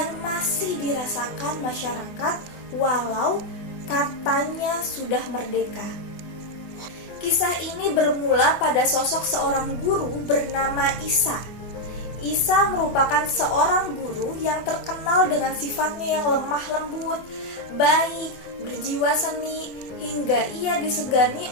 masih dirasakan masyarakat walau katanya sudah merdeka. Kisah ini bermula pada sosok seorang guru bernama Isa. Isa merupakan seorang guru yang terkenal dengan sifatnya yang lemah lembut, baik, berjiwa seni, hingga ia disegani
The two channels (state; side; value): late; right; 24 ms